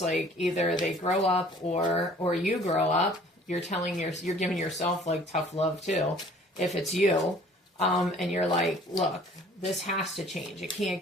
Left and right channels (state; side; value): normal; both; correlation 0.53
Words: either they grow up or you grow up. You're giving yourself, like, tough love too, if it's you, and you're like, look, this has to change. It